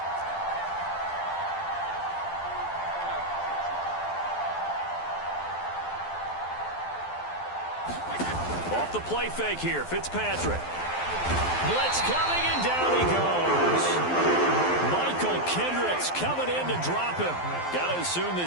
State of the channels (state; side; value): late; right; 12 ms